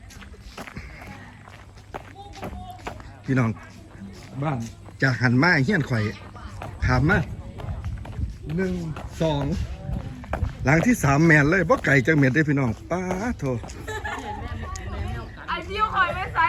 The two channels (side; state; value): both; identical; correlation 1.00